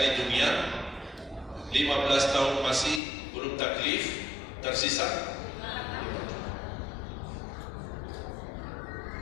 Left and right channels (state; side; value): drops out; right; at 3.0 s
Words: dunia, 15 tahun masih belum taklif, tersisa